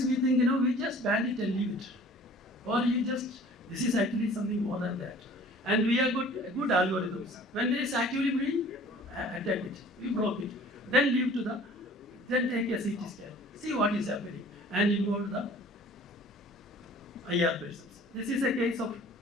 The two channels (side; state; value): both; normal; correlation 0.48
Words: we think, we just ban it and leave it. Or this is actually something more than that. And we have good algorithms. When there is actively bleeding, attack it, we block it. Then then take a CT scan, see what is happening, and involve the IR patients. This is a case of